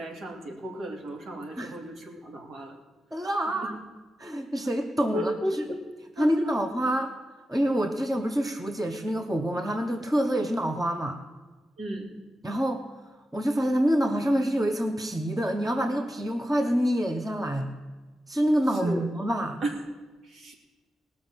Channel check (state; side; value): normal; both; correlation 0.91